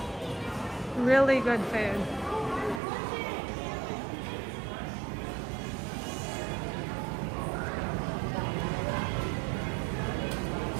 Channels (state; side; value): drops out; left; at 2.8 s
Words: Really good food.